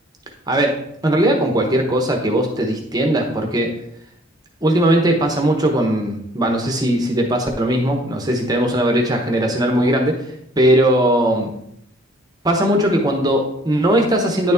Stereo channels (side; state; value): both; normal; correlation 0.57